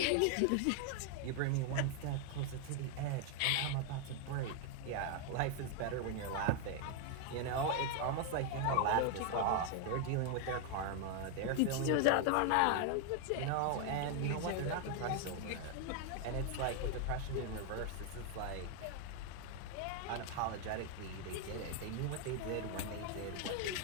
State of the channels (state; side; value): different; both; correlation 0.00